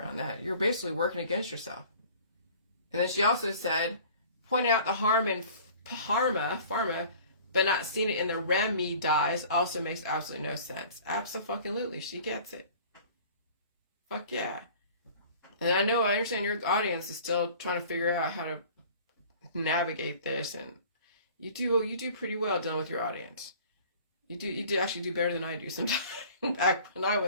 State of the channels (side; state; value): both; inverted; correlation -0.48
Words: that. You're basically working against yourself. And then she also said, pointing out the harm in pharma, but not seeing it in the remedies also makes absolutely no sense. Abso-fucking-lutely. She gets it. Fuck yeah. And I understand your audience is still trying to figure out how to navigate this, and you do pretty well dealing with your audience. You do actually do better than I do sometimes. Back when I